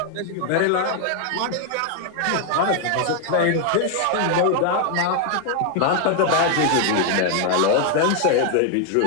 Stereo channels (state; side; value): different; both; correlation 0.00